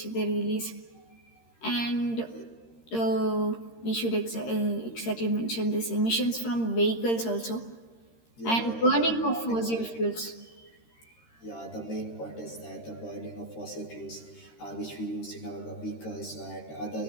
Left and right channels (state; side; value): late; right; 13 ms